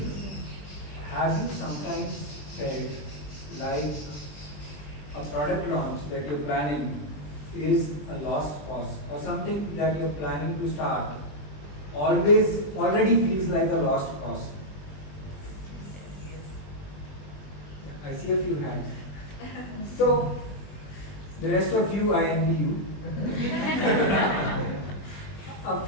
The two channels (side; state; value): right; late; 20 ms